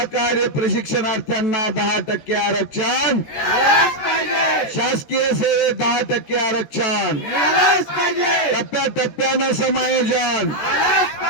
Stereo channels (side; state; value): right; late; 13 ms